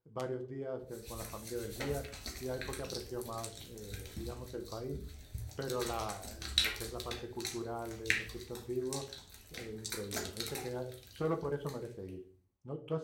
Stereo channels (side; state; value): both; identical; correlation 1.00